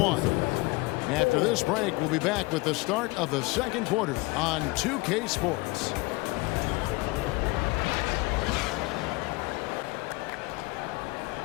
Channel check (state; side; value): quieter; right; 24.1 dB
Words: After this break, we'll be back with the start of the second quarter on 2K Sports.